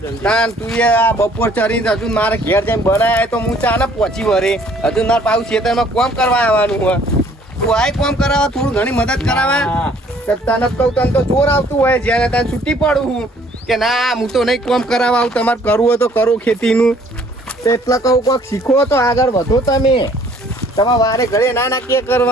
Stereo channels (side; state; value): both; normal; correlation 0.59